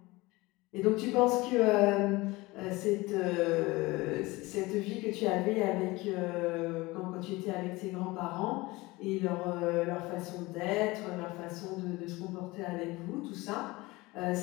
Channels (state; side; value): quieter; right; 21.7 dB